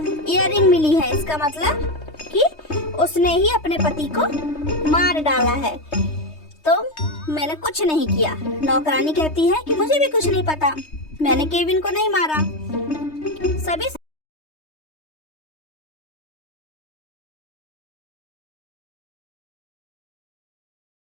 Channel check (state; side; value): late; right; 3.2 ms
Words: इयररिंग मिली है। इसका मतलब कि उसने ही अपने पति को मार डाला है। तो मैंने कुछ नहीं किया। नौकरानी कहती है कि मुझे भी कुछ नहीं पता, मैंने केविन को नहीं मारा। सभी